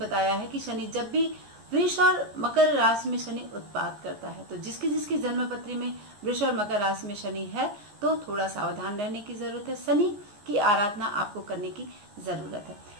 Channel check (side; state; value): left; late; 14 ms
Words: है कि शनि जब भी वृष और मकर राशि में शनि उत्पात करता है, तो जिसकी जन्म पत्री में वृष और मकर राशि में शनि है, तो थोड़ा सावधान रहने की जरूरत है। शनि की आराधना आपको करने की जरूरत है।